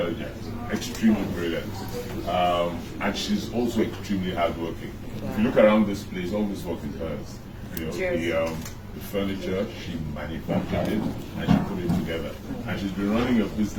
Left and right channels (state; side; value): identical; both; correlation 1.00